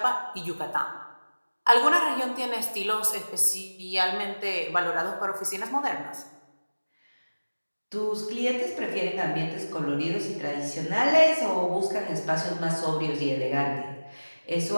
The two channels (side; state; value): both; inverted; correlation -1.00